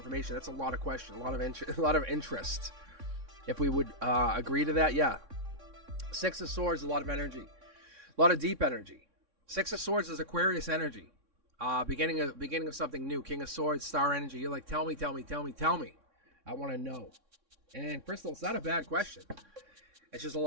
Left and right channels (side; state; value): left; late; 3.6 ms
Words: That's a lot of question, a lot of interest. If we would agree to that, yeah. Six of Swords, a lot of energy, a lot of deep energy. Six of Swords is Aquarius energy. Beginning of something new. King of Swords, star energy. You're like, tell me. I want to know. And Crystal, it's not a bad question. It's just a